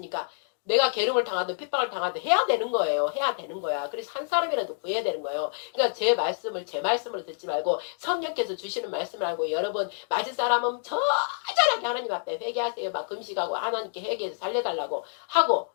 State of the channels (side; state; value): right; silent; 60 dB below the other